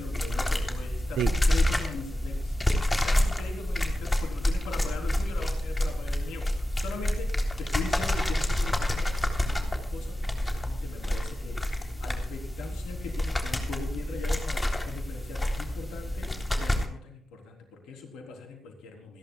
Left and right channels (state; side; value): normal; both; correlation 0.94